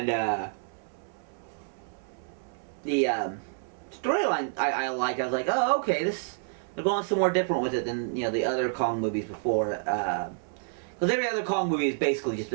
the storyline I liked. I was like, oh, okay, they're going somewhere different with it than the other Kong movies before. Because every other Kong movie has basically just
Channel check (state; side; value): silent; left; 58 dB below the other